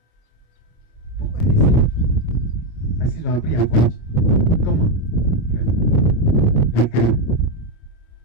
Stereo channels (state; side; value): late; right; 26 ms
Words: Pourquoi il y a des saints? Parce qu'ils ont appris à voir Dieu. Comment? Le cœur.